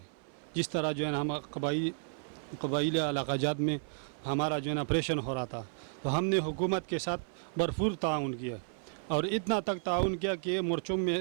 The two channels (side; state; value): left; silent; 56 dB below the other